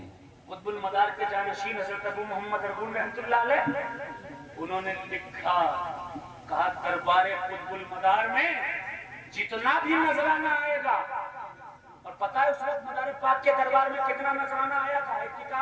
قطب المدار کے جانشین حضرت ابو محمد ارغون رحمۃ اللہ علیہ، انہوں نے لکھا کہا دربار قطب المدار میں جتنا بھی نذرانہ آئے گا، اور پتہ ہے اس وقت مدار پاک کے دربار میں کتنا نذرانہ آیا تھا؟ ایک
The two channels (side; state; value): both; identical; correlation 1.00